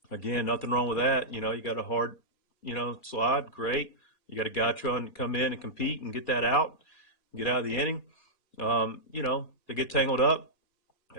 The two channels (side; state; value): right; late; 2.4 ms